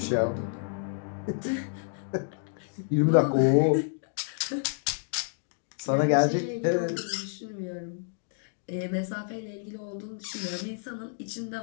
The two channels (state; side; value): silent; right; digital silence